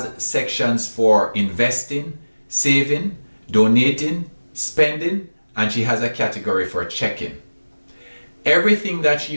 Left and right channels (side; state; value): both; inverted; correlation -1.00